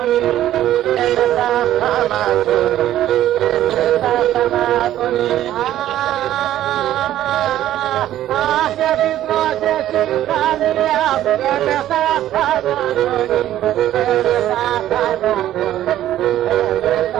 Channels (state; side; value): quieter; left; 12.8 dB